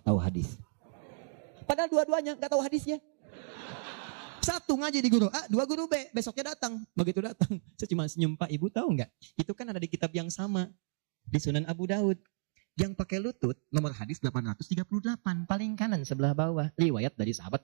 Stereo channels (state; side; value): silent; left; digital silence